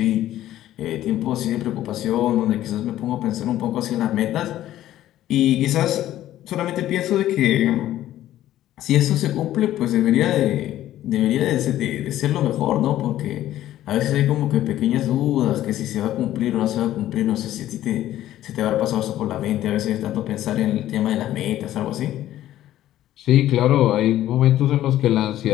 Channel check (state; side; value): quieter; right; 13.3 dB